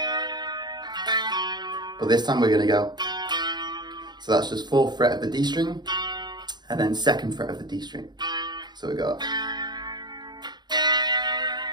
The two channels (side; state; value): left; late; 0.21 ms